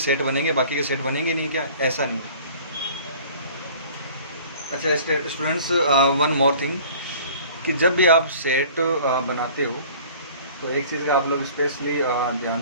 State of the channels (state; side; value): inverted; both; correlation -0.48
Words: बनेंगे, बाकी के सेट बनेंगे नहीं क्या, ऐसा नहीं। अच्छा स्टूडेंट्स वन मोर थिंग, कि जब भी आप सेट बनाते हो तो एक चीज़ का आप लोग स्पेशली ध्यान